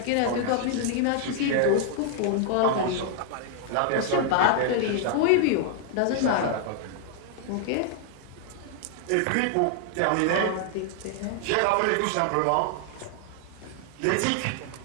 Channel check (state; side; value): different; both; correlation 0.00